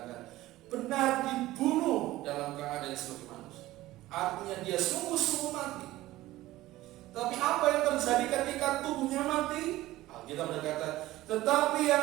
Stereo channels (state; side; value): quieter; left; 16.7 dB